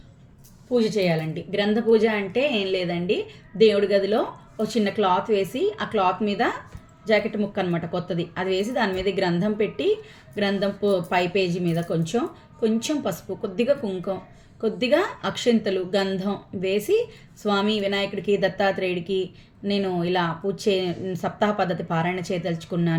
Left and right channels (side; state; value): both; identical; correlation 1.00